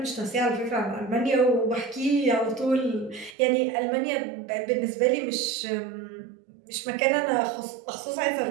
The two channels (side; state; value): left; drops out; at 3.4 s